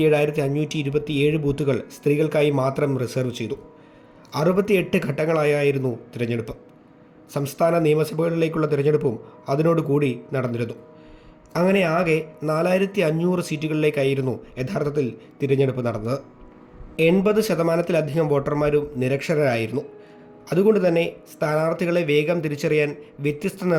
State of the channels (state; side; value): identical; both; correlation 1.00